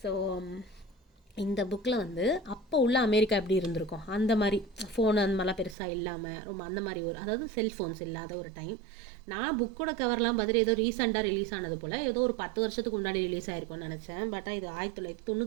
ஸோ இந்த புக்கில் வந்து அப்போ உள்ள அமெரிக்கா எப்படி இருந்திருக்கும், அந்த மாதிரி ஃபோன் அந்த மாதிரிலாம் பெருசாக இல்லாமல் ரொம்ப அந்த மாதிரி ஒரு, அதாவது செல்ஃபோன்ஸ் இல்லாத ஒரு டைம். நான் புக்கோட கவர்லாம் பார்த்துட்டு ஏதோ ரீசெண்டாக ரிலீஸ் ஆனது போல் ஏதோ ஒரு 10 வருஷத்துக்கு முன்னாடி ரிலீஸ் ஆயிருக்கும்னு நினச்சேன். பட் இது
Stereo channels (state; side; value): drops out; left; at 5.8 s